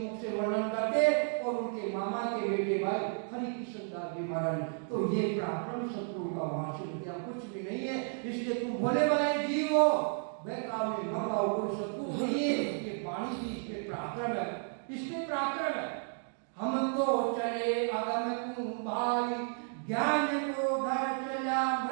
से वर्णन करते, और उनके मामा के बेटे भाई हरि कृष्ण दास जी महाराज। तो ये पराक्रम सतगुरु का वहां से विद्या कुछ भी नहीं है, इसलिए तुम भोले भाले जीव हो, बेकार में मंगाओ, कोई सतगुरु नहीं है। ये वाणी की इसमें पराक्रम है, इसमें पराक्रम है। हम तो चले अगम कुंभाई, ज्ञान को धर चला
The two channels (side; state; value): left; silent; 56 dB below the other